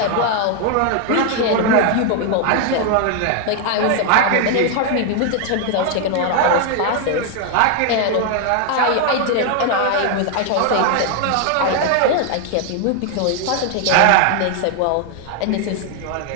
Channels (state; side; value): different; both; correlation 0.00